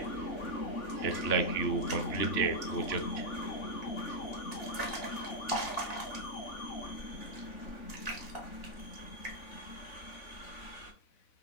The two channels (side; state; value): right; late; 3.5 ms